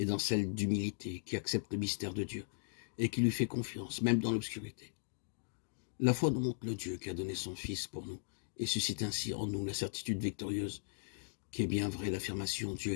dans celle d'humilité, qui accepte le mystère de Dieu, et qui lui fait confiance, même dans l'obscurité. La foi nous montre le Dieu qui a donné son Fils pour nous, et suscite ainsi en nous la certitude victorieuse, qui est bien vraie l'affirmation « Dieu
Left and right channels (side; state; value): right; silent; digital silence